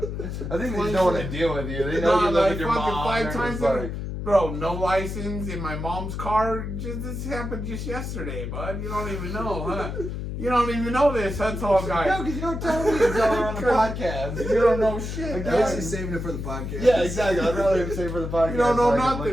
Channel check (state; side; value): noise; left; hum, 5 dB below the sound